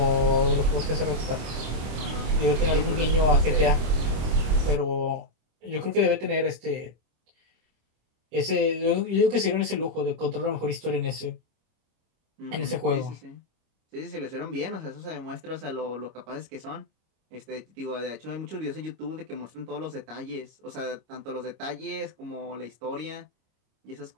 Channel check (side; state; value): left; late; 26 ms